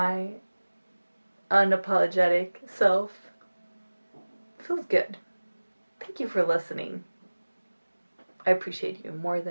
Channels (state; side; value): inverted; both; correlation -1.00